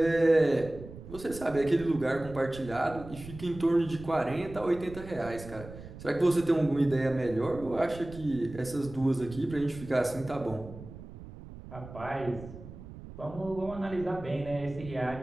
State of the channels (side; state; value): right; noise; rumble, 14 dB below the sound